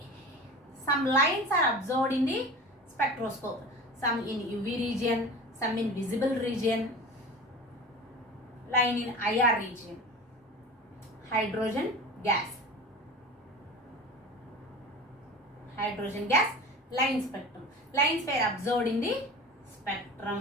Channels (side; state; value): both; normal; correlation 0.35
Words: Some lines are observed in the spectroscope. Some in UV region, some in visible region, line in IR region. Hydrogen gas line spectrum. Lines were observed in the